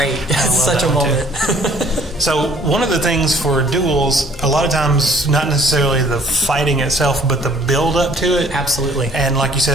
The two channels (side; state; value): both; normal; correlation 0.57